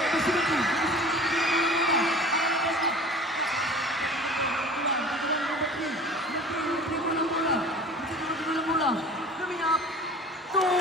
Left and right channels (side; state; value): both; normal; correlation 0.42